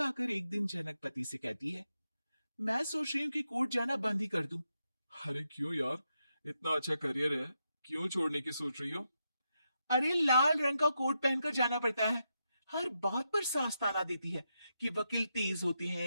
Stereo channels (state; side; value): inverted; both; correlation -0.84